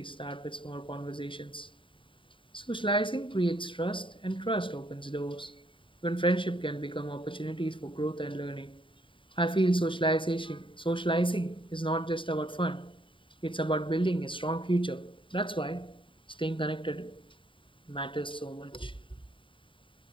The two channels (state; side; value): late; right; 0.25 ms